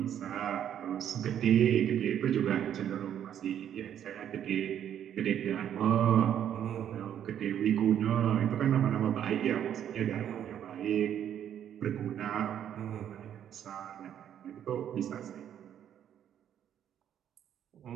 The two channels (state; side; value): quieter; left; 9.9 dB